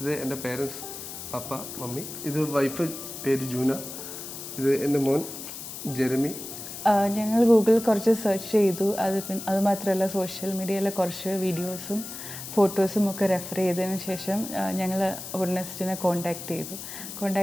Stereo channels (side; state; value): left; noise; hiss, 10 dB below the sound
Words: എൻ്റെ പേരൻസ് പപ്പ മമ്മി. ഇത് വൈഫ് പേര് ജൂന. ഇത് എൻ്റെ മോൻ ജെറമി. ഞങ്ങൾ ഗൂഗിളിൽ കുറച്ച് സെർച്ച് ചെയ്തു. അത് മാത്രമല്ല സോഷ്യൽ മീഡിയയിലെ കുറച്ച് വീഡിയോസും ഫോട്ടോസും ഒക്കെ റെഫർ ചെയ്തതിന് ശേഷം ഞങ്ങൾ വുഡ്നെസ്റ്റിനെ കോൺടാക്റ്റ്